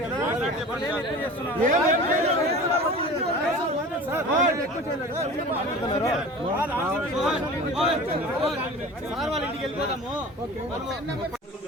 కదా. సార్ వాళ్ళ ఇంటికి వెళ్ళిపోతాము.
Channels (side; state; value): both; normal; correlation 0.38